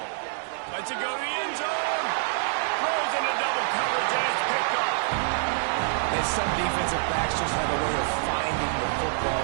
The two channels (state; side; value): silent; left; digital silence